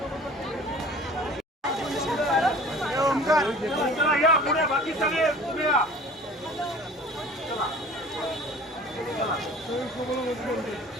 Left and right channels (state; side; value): normal; both; correlation 0.45